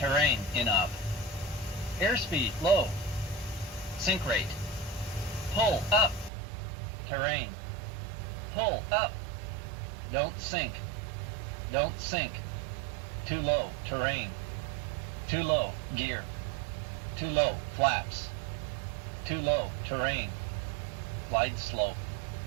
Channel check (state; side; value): drops out; left; at 6.3 s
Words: in up. Airspeed low. Sink rate. Pull up. Terrain. Pull up. Don't sink. Don't sink. Too low. Terrain. Too low. Gear. Too low. Flaps. Too low. Terrain. Glide slope.